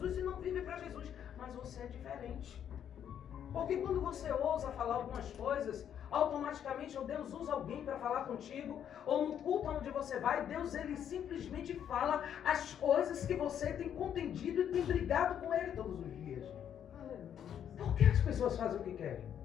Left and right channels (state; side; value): quieter; right; 9.3 dB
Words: e não vive para Jesus. Mas você é diferente. Porque quando você ousa falar algumas coisas, automaticamente ou Deus usa alguém para falar contigo, ou no culto onde você vai, Deus ele simplesmente fala as coisas que você tem contendido e tem brigado com Ele todos os dias. Por que as pessoas fazem o que querem?